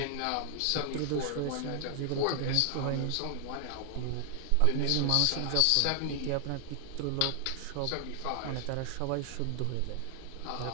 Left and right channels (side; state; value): both; different; correlation 0.00